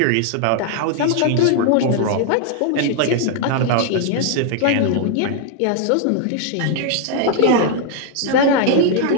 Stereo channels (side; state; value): both; different; correlation 0.00